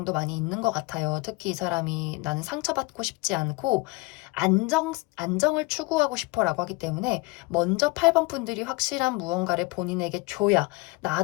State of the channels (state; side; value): quieter; right; 24.7 dB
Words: 많이 있는 것 같아요. 특히 이 사람이 나는 상처받고 싶지 않고 안정을 추구하고 싶어라고 하기 때문에 먼저 8번 분들이 확실한 무언가를 본인에게 줘야